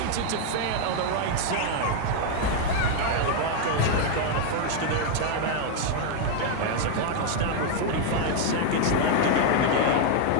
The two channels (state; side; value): different; both; correlation 0.00